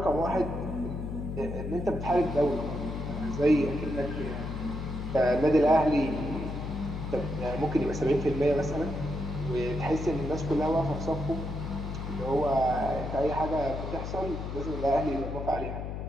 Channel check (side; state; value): left; noise; hum, 5 dB below the sound